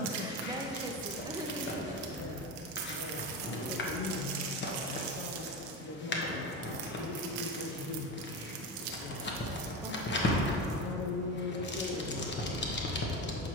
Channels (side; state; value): both; normal; correlation 0.22